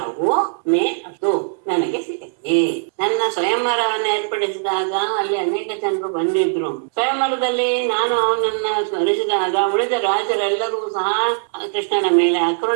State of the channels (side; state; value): left; silent; 66 dB below the other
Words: ಮೇ ಅದು ನನಗೆ ಸಿಗುತ್ತೆ. ನನ್ನ ಸ್ವಯಂವರವನ್ನು ಏರ್ಪಡಿಸಿದಾಗ ಅಲ್ಲಿ ಅನೇಕ ಜನರು ಬಂದಿದ್ರು. ಸ್ವಯಂವರದಲ್ಲಿ ನಾನು ಅವನನ್ನ ಸ್ಮರಿಸಿದಾಗ ಉಳಿದ ರಾಜರೆಲ್ಲರೂ ಸಹ ಕೃಷ್ಣನ ಮೇಲೆ